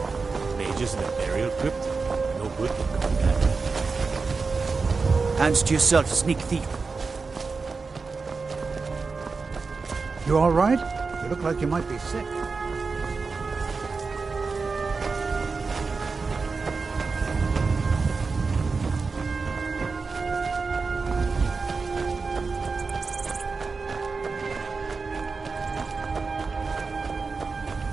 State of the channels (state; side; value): quieter; left; 4.5 dB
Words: Mages in a burial crypt? No good can come of that. Hands to yourself, sneak thief. You all right? You look like you might be sick.